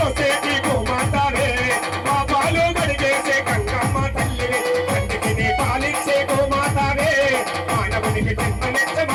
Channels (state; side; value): identical; both; correlation 1.00